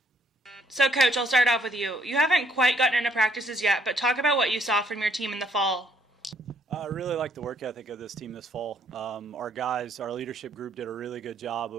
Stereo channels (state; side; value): normal; both; correlation 0.68